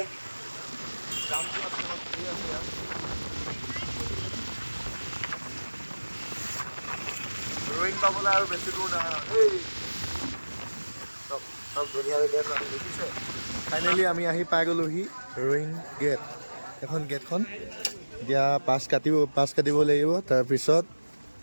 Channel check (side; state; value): both; inverted; correlation -1.00